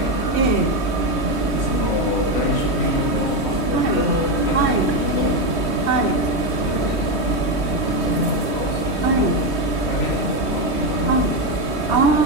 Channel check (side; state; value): right; late; 3.2 ms